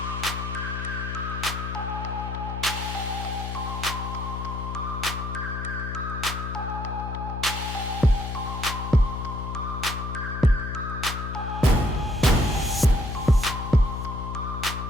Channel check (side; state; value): left; noise; hum, 5 dB below the sound